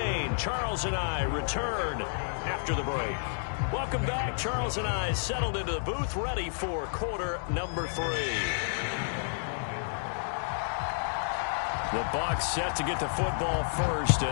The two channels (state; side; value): silent; right; digital silence